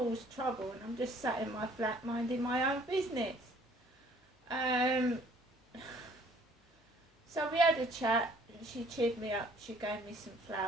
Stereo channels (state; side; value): normal; both; correlation 0.58